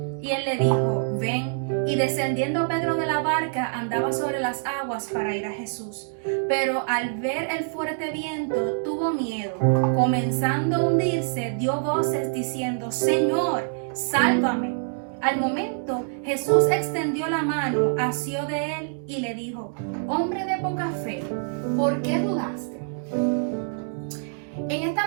Y él le dijo, ven. Y descendiendo Pedro de la barca, andaba sobre las aguas para ir a Jesús. Pero al ver el fuerte viento, tuvo miedo. Comenzando a hundirse, dio voces diciendo, Señor, sálvame. Al momento, Jesús extendió la mano, asió de él y le dijo, hombre de poca fe, ¿por qué dudaste? En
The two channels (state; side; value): silent; left; digital silence